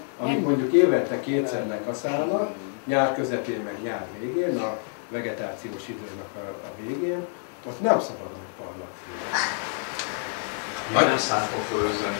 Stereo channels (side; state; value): right; silent; 60 dB below the other